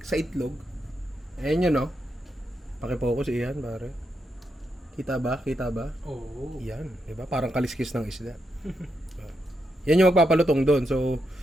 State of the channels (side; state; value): both; normal; correlation 0.83